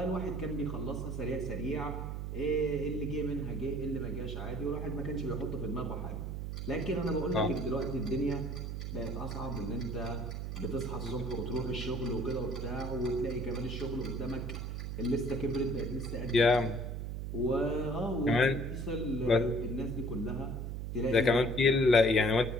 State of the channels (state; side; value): noise; right; hum, 4 dB below the sound